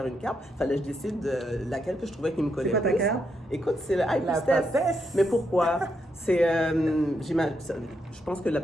une carte, il fallait que je décide de laquelle que je trouvais qui me collait C'est quoi ta plus. carte? Écoute, c'est le High La Priestess. papesse. Mais pourquoi? Je pense que la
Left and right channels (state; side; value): normal; both; correlation 0.80